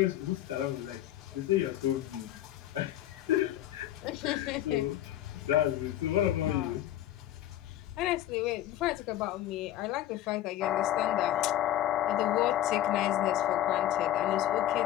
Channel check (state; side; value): quieter; right; 12.9 dB